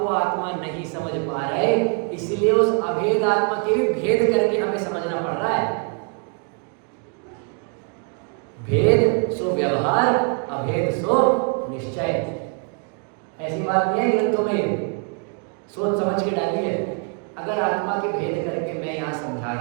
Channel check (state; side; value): quieter; left; 38.9 dB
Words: आत्मा नहीं समझ पा रहे, इसलिए उस अभेद आत्मा के भी भेद करके हमें समझना पड़ रहा है। भेद सो व्यवहार, अभेद सो निश्चय। ऐसी बात नहीं है ग्रंथों में, सोच समझ के डालिए। अगर आत्मा के भेद करके मैं यहाँ समझा